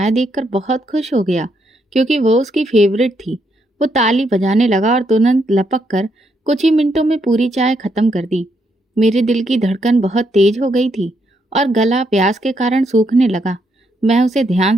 देखकर बहुत खुश हो गया क्योंकि वो उसकी फेवरेट थी। वो ताली बजाने लगा और तुरंत लपक कर कुछ ही मिनटों में पूरी चाय खत्म कर दी। मेरे दिल की धड़कन बहुत तेज हो गई थी और गला प्यास के कारण सूखने लगा। मैं उसे ध्यान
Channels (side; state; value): both; normal; correlation 0.77